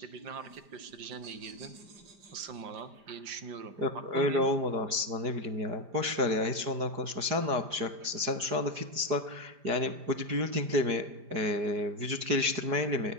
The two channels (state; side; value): late; left; 5.0 ms